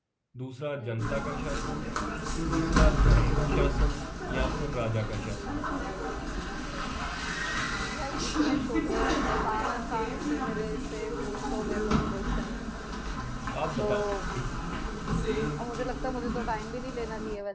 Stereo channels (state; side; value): identical; both; correlation 1.00